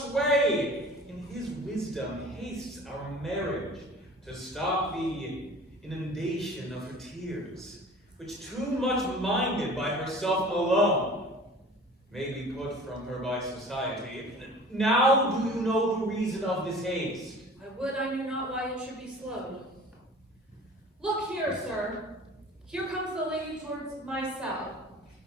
In his wisdom hastes our marriage to stop the inundation of her tears, which too much minded by herself alone may be put from her by society. Now do you know the reason of this haste? I would I knew not why it should be slowed. Look here, sir. Here comes the lady towards my cell.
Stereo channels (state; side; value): normal; both; correlation 0.44